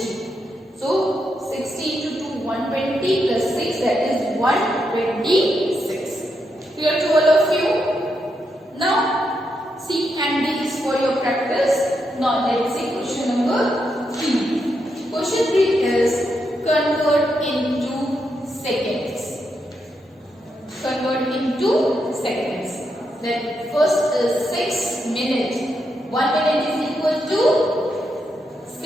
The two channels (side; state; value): both; normal; correlation 0.82